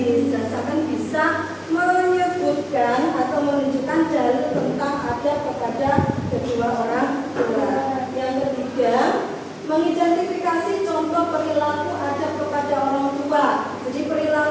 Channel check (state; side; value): identical; both; correlation 1.00